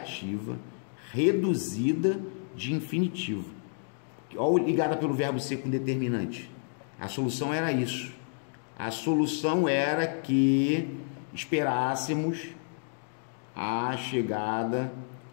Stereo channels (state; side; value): silent; right; digital silence